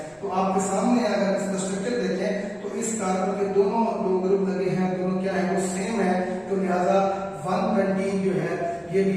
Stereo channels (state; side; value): identical; both; correlation 1.00